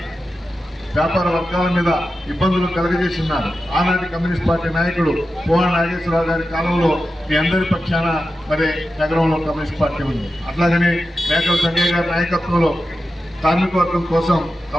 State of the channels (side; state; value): both; normal; correlation 0.91